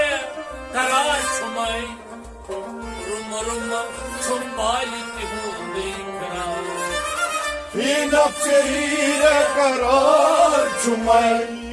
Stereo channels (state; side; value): identical; both; correlation 1.00